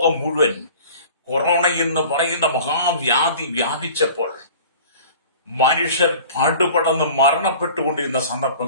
മുഴുവൻ കൊറോണ എന്ന് പറയുന്ന മഹാവ്യാധി വ്യാപിച്ചപ്പോൾ മനുഷ്യർ പാടുപടന്ന് മരണപ്പെട്ടുകൊണ്ടിരുന്ന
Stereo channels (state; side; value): inverted; both; correlation -0.43